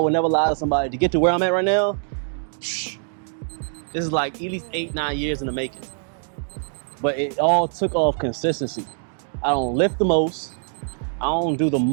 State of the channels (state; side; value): silent; left; digital silence